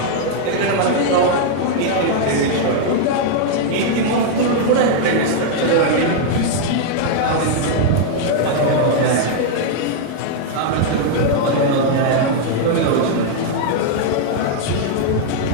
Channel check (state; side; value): different; both; correlation 0.00